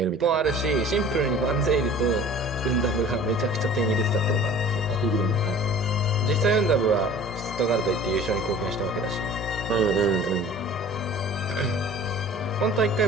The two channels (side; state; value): both; normal; correlation 0.45